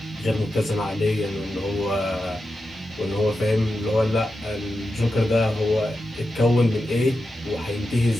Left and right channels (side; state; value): both; normal; correlation 0.89